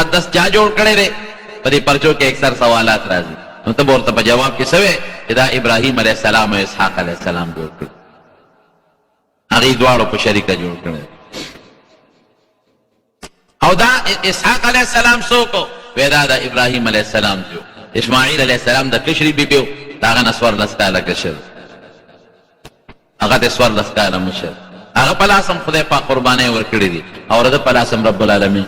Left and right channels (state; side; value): identical; both; correlation 1.00